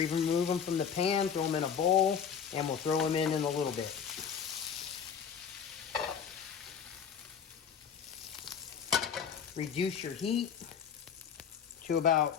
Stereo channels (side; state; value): right; quieter; 7.3 dB